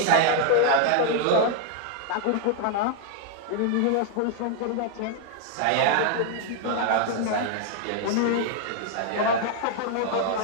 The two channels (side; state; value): both; different; correlation 0.00